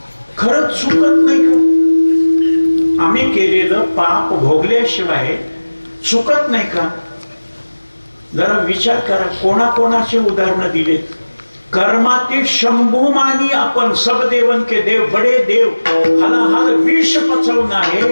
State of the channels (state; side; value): inverted; both; correlation -1.00